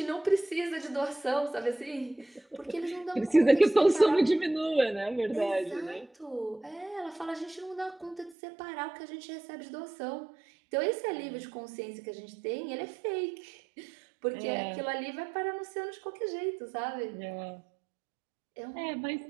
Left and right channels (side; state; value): left; drops out; at 8.3 s